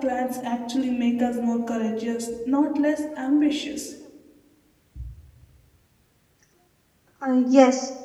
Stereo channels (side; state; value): both; identical; correlation 1.00